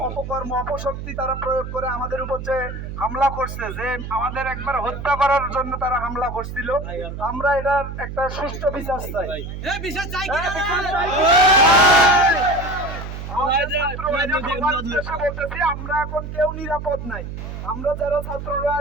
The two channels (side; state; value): right; noise; hum, 8 dB below the sound